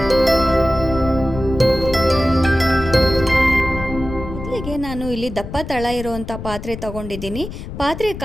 ನಾನು ಇಲ್ಲಿ ದಪ್ಪ ತಳ ಇರುವಂಥ ಪಾತ್ರೆ ತಗೊಂಡಿದ್ದೀನಿ. ಪಾತ್ರೆ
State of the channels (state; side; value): noise; left; rumble, 10 dB below the sound